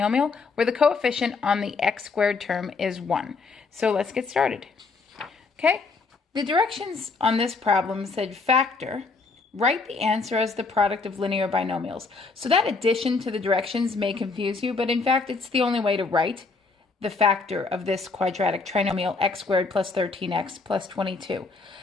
where the coefficient on the x squared term is 1. So let's get started. Okay, the directions on this problem said factor, write the answer as the product of linear binomials. So that addition to the directions may confuse you, but in fact it's the only way to write the factor of this quadratic trinomial x squared plus 13x plus 22.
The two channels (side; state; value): right; quieter; 4.2 dB